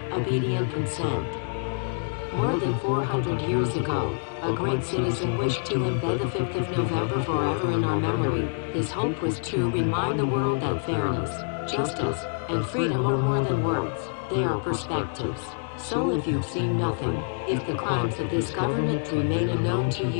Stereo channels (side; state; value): right; silent; 61 dB below the other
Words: obedient consent. More than 400 years ago, a great citizen wished to embed the 5th of November forever in our memory. His hope was to remind the world that fairness, justice, and freedom are more than words, they are perspectives. So if you've seen nothing, if the crimes of this government remain unknown to